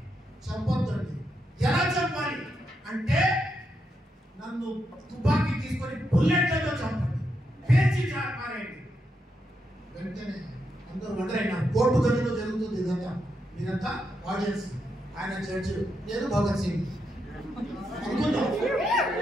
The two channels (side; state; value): both; normal; correlation 0.82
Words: చంపొద్దండి. ఎలా చంపాలి అంటే నన్ను తుపాకీ తీసుకొని బుల్లెట్లతో చంపండి, పేర్చి పారేయండి. వెంటనే అందరూ వండరైన కోర్టు గదిలో జరుగుతుంది ఇదంతా. మీరంతా ఆడియన్స్, ఆయన జడ్జి, నేను భగత్ సింగ్ అనుకుందాం.